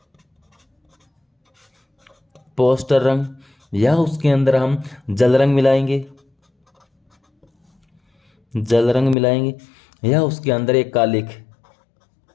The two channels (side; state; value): right; drops out; at 9.2 s